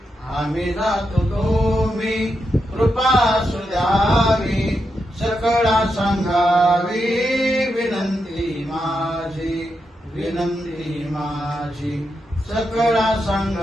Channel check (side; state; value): both; normal; correlation 0.85